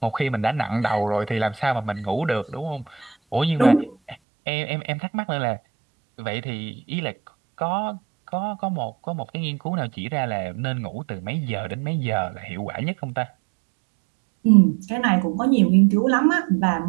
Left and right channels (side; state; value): left; drops out; at 4.2 s